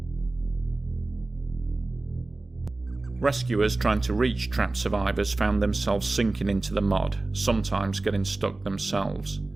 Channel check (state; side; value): quieter; left; 3.1 dB